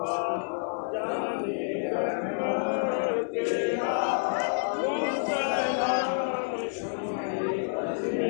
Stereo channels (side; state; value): right; silent; 59 dB below the other